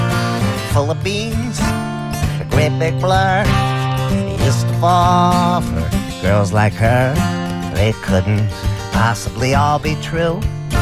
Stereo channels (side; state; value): both; identical; correlation 1.00